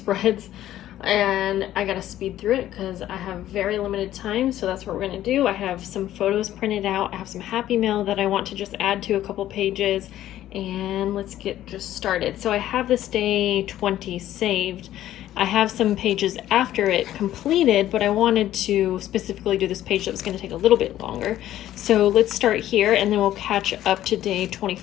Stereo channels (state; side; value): quieter; right; 13.0 dB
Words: and I gotta speed through it because I have very limited time, so that's what we're gonna do. I have some photos printed out, I have some Happy Mail that I want to just add to a couple pages, and let's get just started. So I have this day 20 saved. I have some pages after it completed, but I wanted to specifically do this page that was going to take a little bit longer. So let's start here and then we'll catch up to day